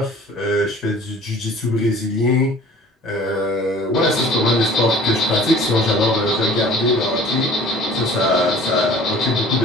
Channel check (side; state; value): both; normal; correlation 0.48